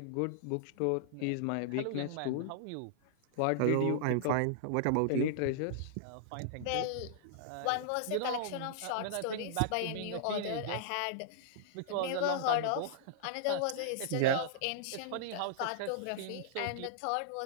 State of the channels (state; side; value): different; both; correlation -0.02